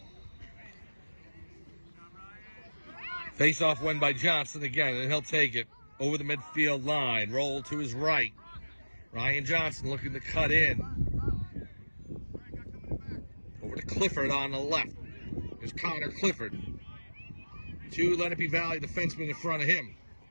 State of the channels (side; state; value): both; inverted; correlation -1.00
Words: Face-off win by Johnson again, and he'll take it over the midfield line. Roll to his right. Ryan Johnson looking to cut in. Over to Clifford on the left. There's Connor Clifford. Two Lenape Valley defensemen in front of him.